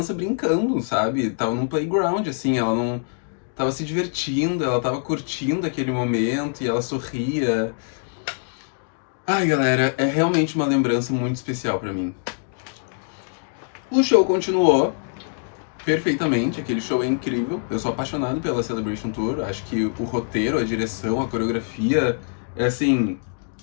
brincando, sabe? Tava num playground, assim, ela não tava se divertindo, ela tava curtindo aquele momento e ela sorria. Ai, galera, é realmente uma lembrança muito especial pra mim. O show continuou perfeitamente, aquele show é incrível. Eu sou apaixonado pela Celebration Tour. Acho que o roteiro, a direção, a coreografia é, assim,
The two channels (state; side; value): silent; right; 63 dB below the other